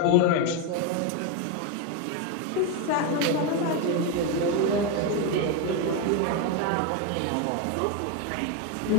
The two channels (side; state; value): both; different; correlation 0.02